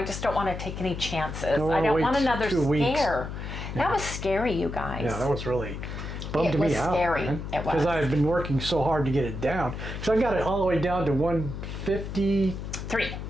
just don't want to take any chances. I don't want another 2 weeks. scare. That was scary, you guys. Yeah, that was really bummed me out. Scary. Man. It was. Because I've been working so hard to get it down. So I got it all the way down to 153.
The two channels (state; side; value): noise; left; hum, 7 dB below the sound